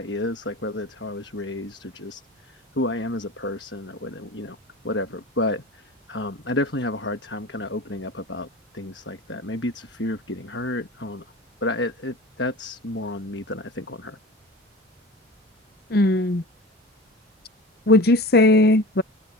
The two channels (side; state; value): both; normal; correlation 0.35